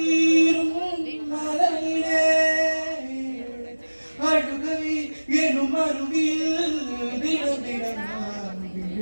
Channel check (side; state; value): both; inverted; correlation -1.00